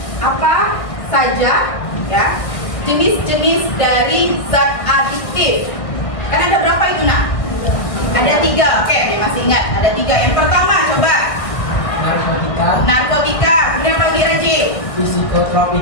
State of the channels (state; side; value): late; right; 1.8 ms